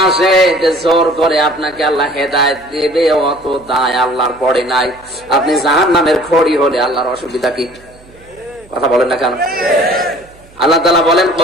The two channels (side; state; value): right; noise; hum, 26 dB below the sound